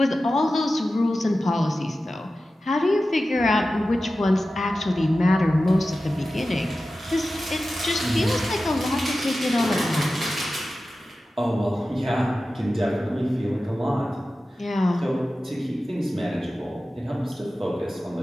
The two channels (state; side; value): normal; both; correlation 0.94